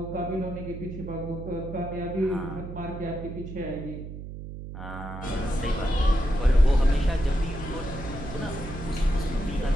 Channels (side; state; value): right; noise; hum, 10 dB below the sound